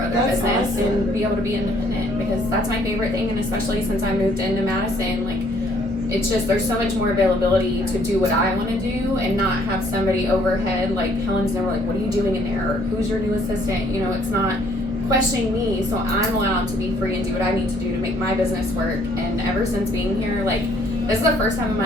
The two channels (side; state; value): both; normal; correlation 0.63